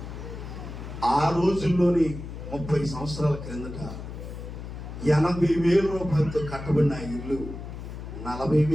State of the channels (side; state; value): left; noise; hum, 10 dB below the sound